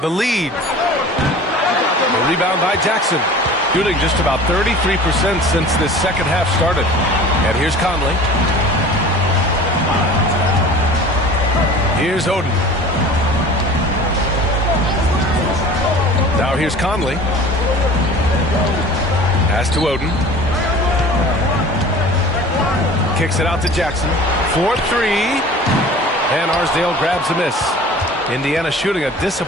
lead. The rebound by Jackson. Shooting just about 33% since this second half started. And here's Conley. Here's Oden. Now here's Conley. Pass to Oden. Kicks it out to Jackson. 4-3. And Arsdale grabs a miss. Indiana shooting a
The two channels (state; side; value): normal; both; correlation 0.42